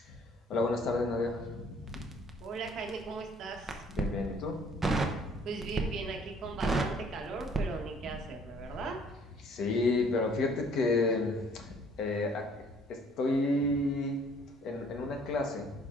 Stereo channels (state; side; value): normal; both; correlation 0.58